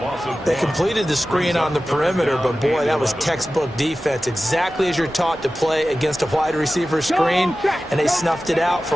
They completed the screen on the perimeter, but boy, that was textbook defense. Exactly as you're taught to play against a wide receiver screen, and they snuffed it out for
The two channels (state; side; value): normal; both; correlation 0.95